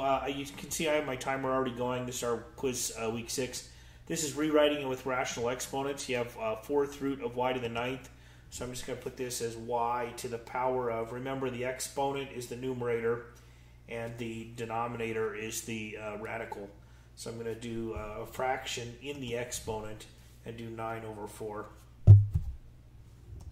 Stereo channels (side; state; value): both; identical; correlation 1.00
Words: you can see I have my timer already going. This is our quiz week 6. This is rewriting it with rational exponents. You have 4th root of y to the 9th. So I'm just going to put this as y to the power of, remember the exponent is the numerator and the denominator is the radical. So I'm going to do a fraction in the exponent and do 9 over 4.